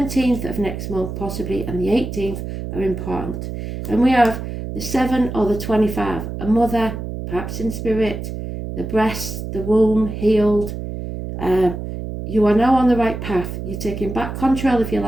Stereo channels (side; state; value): right; noise; hum, 7 dB below the sound